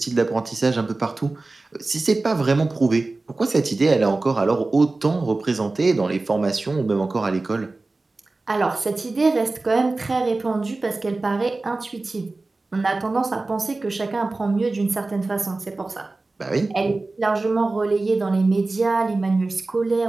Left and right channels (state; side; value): quieter; left; 3.3 dB